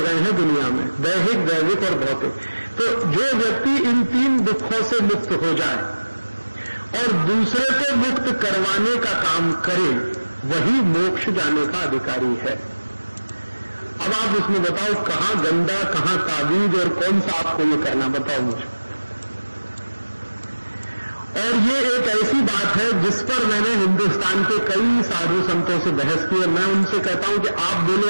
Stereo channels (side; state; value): both; inverted; correlation -1.00